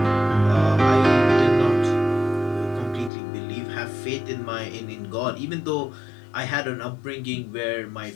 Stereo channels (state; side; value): drops out; right; at 3.1 s